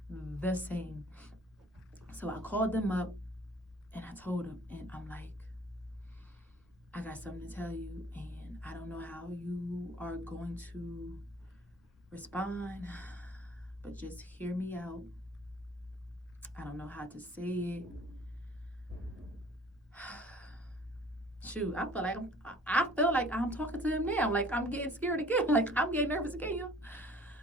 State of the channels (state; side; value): normal; both; correlation 0.52